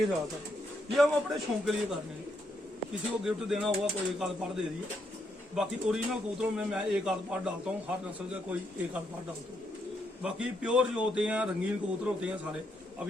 रहा था, ये हम अपने शौक के लिए कर रहे हैं। किसी को गिफ्ट देना हुआ कोई एक आध पार दे दिए। बाकी ओरिजिनल कबूतरों में मैं एक आध पार डालता हूँ, हर नस्ल का कोई एक आध पार डालता हूँ। बाकी प्योर जो होते हैं, रंगीन कबूतर होते हैं सारे,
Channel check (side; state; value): both; normal; correlation 0.77